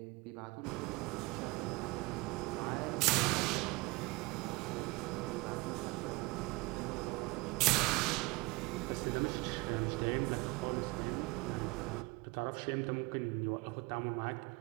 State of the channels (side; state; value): left; quieter; 24.1 dB